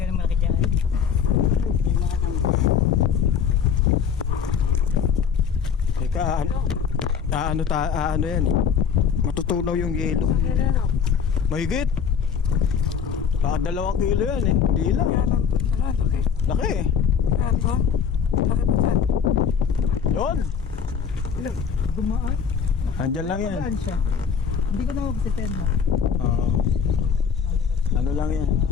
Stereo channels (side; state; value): right; quieter; 7.0 dB